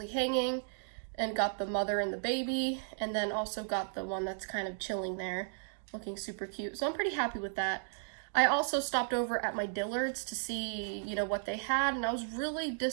hanging, and got the mother and the baby, and then also got the one that's kind of chilling there, looking super cute. So I'm pretty happy with that. I also stopped over at my Dillard's to see, what they had, and I was really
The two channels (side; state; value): left; silent; digital silence